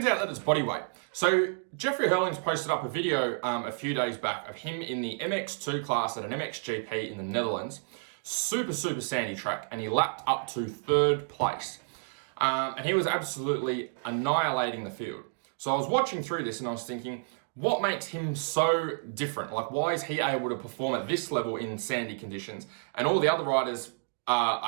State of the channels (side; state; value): left; silent; digital silence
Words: out that it's body weight. So Jeffrey Herlings posted up a video a few days back of him in the MX2 class at an MXGP in the Netherlands. Super sandy track, and he lapped up to 3rd place. And he was absolutely annihilating the field. So I was watching through this and I was thinking, what makes him so different? Like, why is he able to perform at this level in sandy conditions and all the other riders